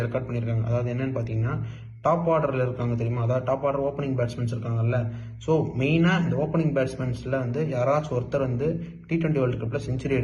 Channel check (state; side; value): identical; both; correlation 1.00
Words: ரெக்கார்ட் பண்ணியிருக்காங்க. அதாவது என்னன்னு பார்த்தீங்கன்னா டாப் ஆர்டரில் இருக்காங்க தெரியுமா, அதாவது டாப் ஆர்டர் ஓப்பனிங் பேட்ஸ்மேன்ஸ் இருக்காங்கல்ல. ஸோ மெயினாக இந்த ஓப்பனிங் பேட்ஸ்மேன்ஸில் வந்து யாராச்சும் ஒருத்தர் வந்து T20 வேர்ல்டு கப்பில் செஞ்சுரி